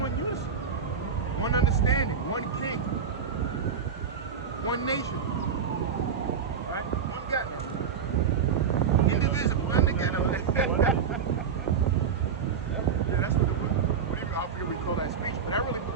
unison, one understanding, one king. one nation. Right? One God now. Indivisible, untogether. Yeah, that's what I forget we call that speech, but that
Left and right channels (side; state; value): left; quieter; 6.6 dB